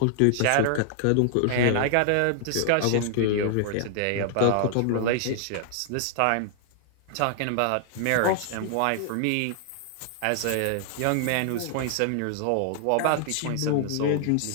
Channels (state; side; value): different; both; correlation 0.00